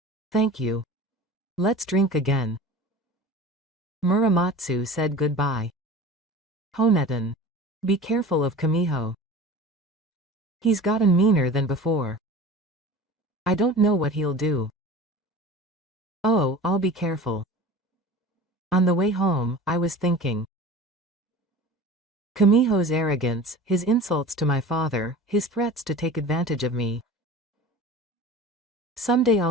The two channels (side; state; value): both; normal; correlation 0.37